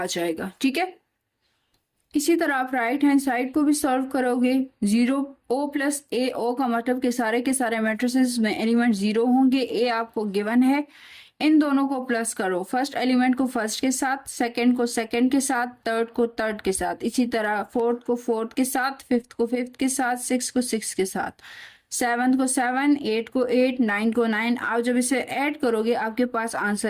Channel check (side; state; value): both; identical; correlation 1.00